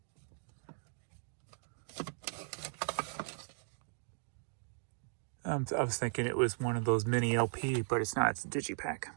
I was thinking it was one of those mini LP, but it's not. It's a digipack.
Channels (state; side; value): silent; left; digital silence